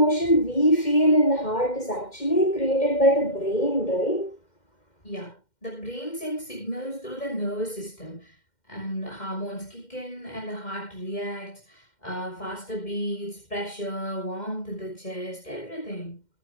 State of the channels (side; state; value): right; late; 2.1 ms